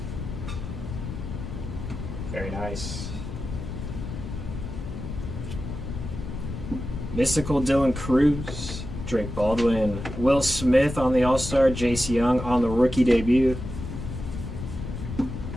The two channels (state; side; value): noise; left; rumble, 7 dB below the sound